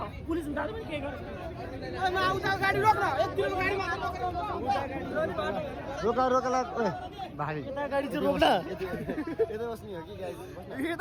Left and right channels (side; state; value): both; identical; correlation 1.00